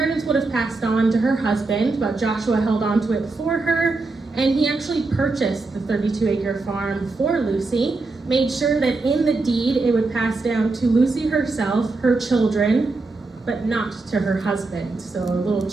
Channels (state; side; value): quieter; left; 3.5 dB